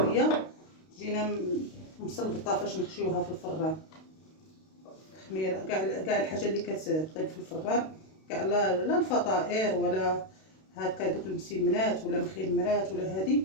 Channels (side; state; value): right; late; 32 ms